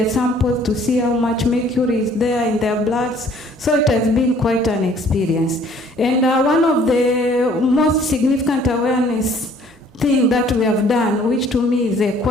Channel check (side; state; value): both; normal; correlation 0.57